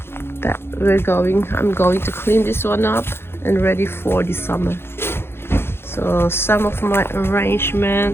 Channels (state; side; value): late; right; 0.11 ms